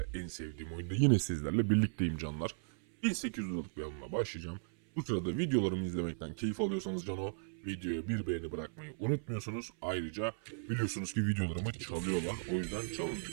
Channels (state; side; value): silent; left; 53 dB below the other